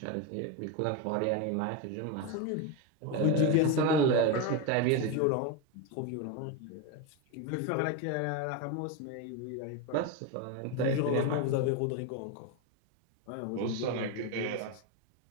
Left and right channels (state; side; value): different; both; correlation 0.04